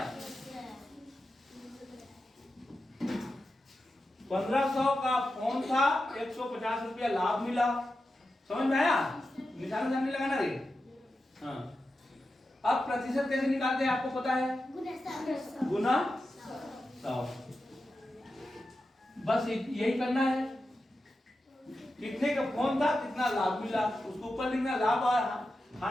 1500 का फोन था, 150 रुपया लाभ मिला। समझ में आया, निशान नहीं लगाना रे। हाँ, अब प्रतिशत कैसे निकालते हैं आपको पता है, गुना 100। बस यही करना है। कितने का फोन था, कितना लाभ मिला, उसको ऊपर लिखना। लाभ और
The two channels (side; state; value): both; normal; correlation 0.91